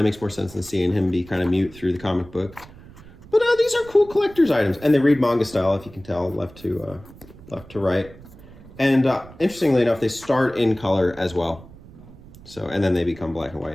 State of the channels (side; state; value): right; noise; rumble, 20 dB below the sound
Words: makes more sense than seeing him be kind of mute through the comic book. But these are cool collector's items, and they read manga style, if you can tell, left to right. And interestingly enough, they start in color as well. So, and then they become black and